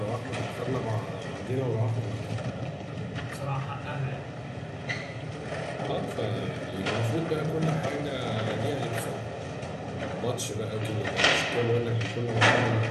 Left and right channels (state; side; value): identical; both; correlation 1.00